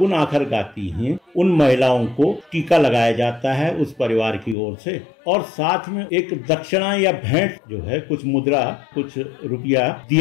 आखर गाती हैं, उन महिलाओं को टीका लगाया जाता है उस परिवार की ओर से, और साथ में एक दक्षिणा या भेंट जो है, कुछ मुद्रा, कुछ रुपया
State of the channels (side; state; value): right; drops out; at 4.5 s